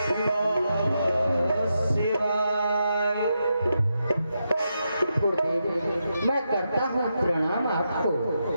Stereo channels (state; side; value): inverted; both; correlation -0.84